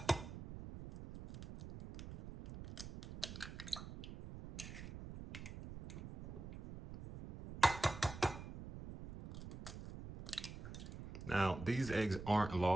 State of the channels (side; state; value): right; noise; rumble, 10 dB below the sound